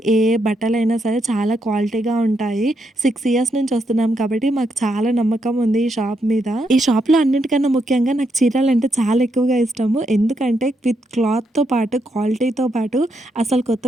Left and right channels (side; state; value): both; normal; correlation 0.80